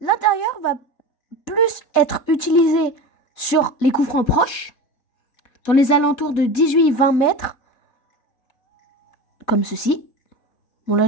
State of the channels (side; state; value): right; late; 4.4 ms